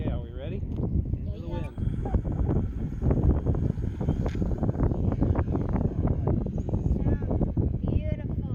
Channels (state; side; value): identical; both; correlation 1.00